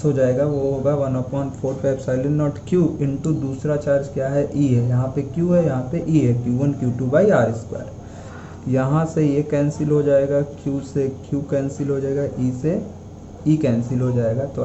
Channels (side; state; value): both; identical; correlation 1.00